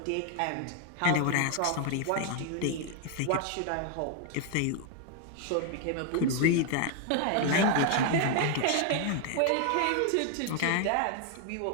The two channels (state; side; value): different; both; correlation 0.00